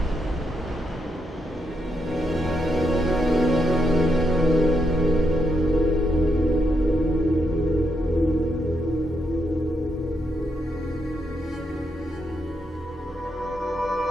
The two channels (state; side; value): normal; both; correlation 0.80